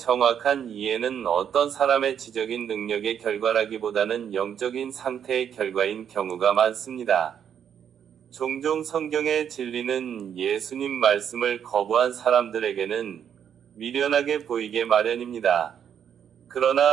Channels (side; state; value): left; quieter; 8.6 dB